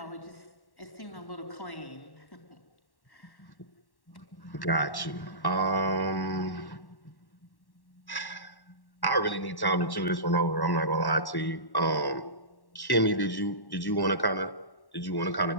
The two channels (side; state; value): right; late; 1.1 ms